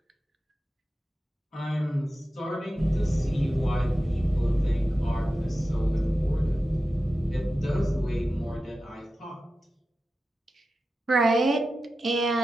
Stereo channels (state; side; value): normal; both; correlation 0.93